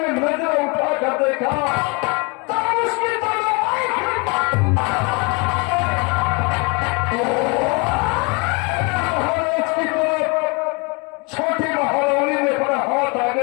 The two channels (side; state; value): right; quieter; 29.3 dB